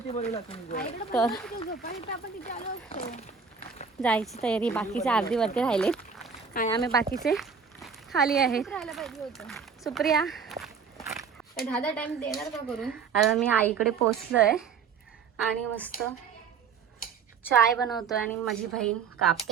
झोपायला आपण तिथे आलो असतो. जायची तयारी. बाकीचे अर्धी वरती राहिले आणि आम्ही बाकीचे खाली आहेत. राहायला पाहिजे होतं. सुप्रिया दहा टाइम देणार का करून? आता मी आईकडे पोचलोय आणि मस्त चाय बनवतोय आणि माझी बहीण कापते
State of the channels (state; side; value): quieter; left; 6.0 dB